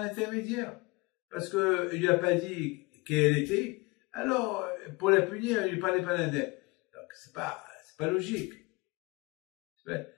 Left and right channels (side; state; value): right; quieter; 25.5 dB